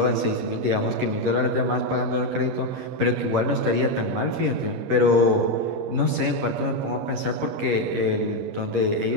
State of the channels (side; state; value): left; late; 10 ms